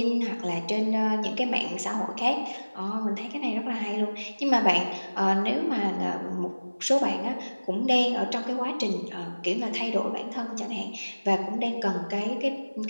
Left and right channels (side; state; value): both; inverted; correlation -1.00